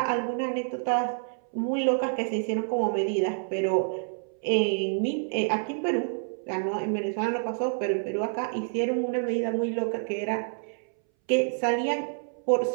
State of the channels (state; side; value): silent; left; 59 dB below the other